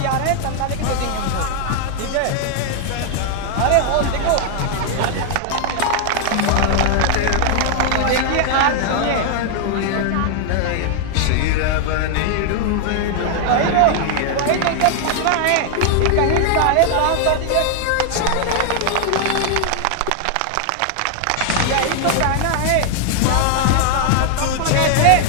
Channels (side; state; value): both; different; correlation 0.00